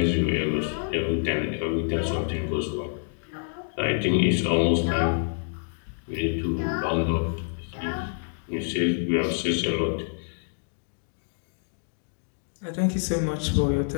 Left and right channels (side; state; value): right; silent; digital silence